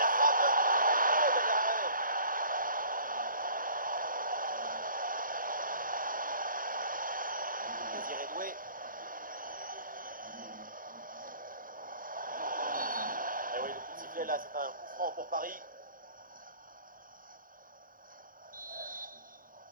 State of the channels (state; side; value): late; left; 0.40 ms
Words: frappe. Oh, bel arrêt. Désiré Doué. Et oui, le coup de sifflet là, c'est un coup franc pour Paris.